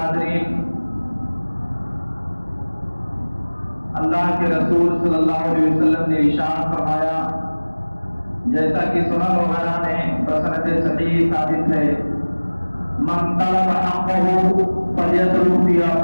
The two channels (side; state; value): both; inverted; correlation -1.00